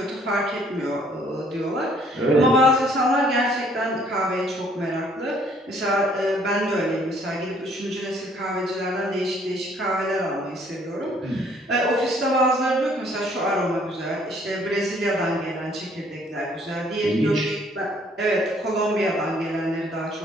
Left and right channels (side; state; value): both; normal; correlation 0.62